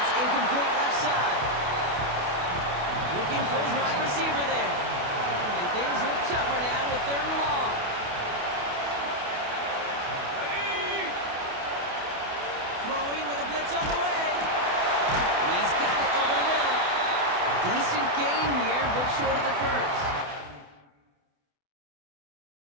incomplete left side. Looking for his wide receiver there. And things look tougher now with 3rd and long. Ready! Throwing with a blitz on the way. He's got it over the middle. Decent gain here, but short of the first.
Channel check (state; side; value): late; left; 28 ms